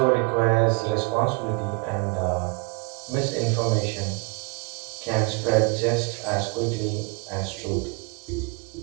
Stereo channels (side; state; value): left; quieter; 29.8 dB